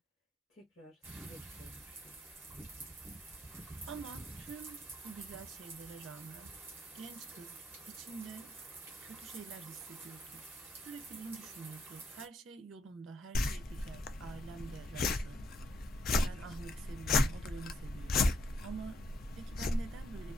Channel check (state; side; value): normal; both; correlation 0.74